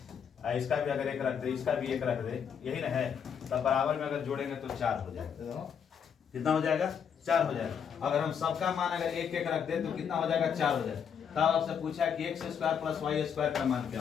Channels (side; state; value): right; quieter; 7.5 dB